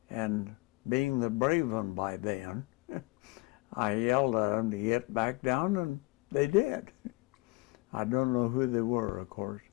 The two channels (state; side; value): quieter; right; 24.3 dB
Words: And being the brave one by then, I yelled at them to get back down, and they did. I don't know who they were, of course.